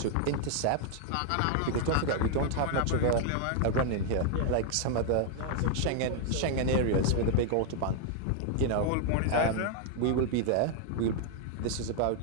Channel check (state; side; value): different; both; correlation 0.00